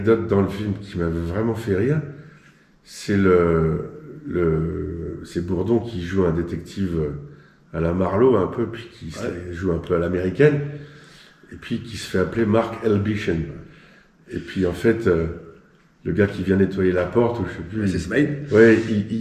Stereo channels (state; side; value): identical; both; correlation 1.00